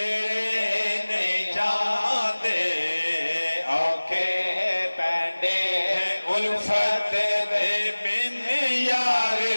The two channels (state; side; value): inverted; both; correlation -1.00